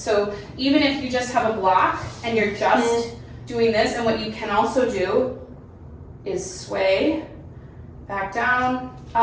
even if you just have a block and you're just doing this, and what you can also do is sway back down,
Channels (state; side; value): identical; both; correlation 1.00